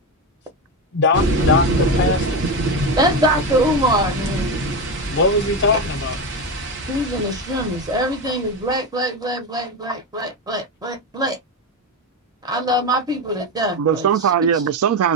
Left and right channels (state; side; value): normal; both; correlation 0.15